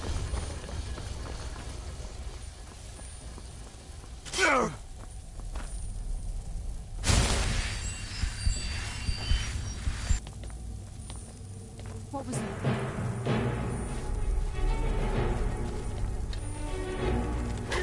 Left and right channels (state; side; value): identical; both; correlation 1.00